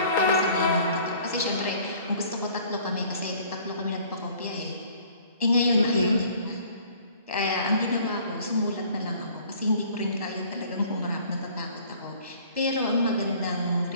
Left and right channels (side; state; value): both; inverted; correlation -0.54